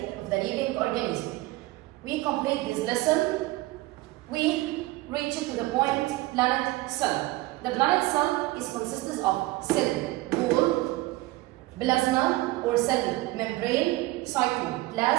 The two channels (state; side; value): quieter; left; 19.5 dB